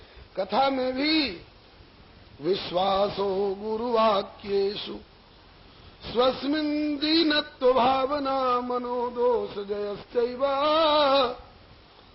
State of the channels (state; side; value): identical; both; correlation 1.00